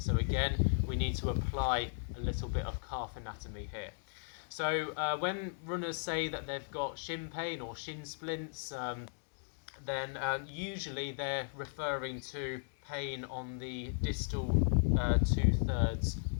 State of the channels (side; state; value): right; silent; digital silence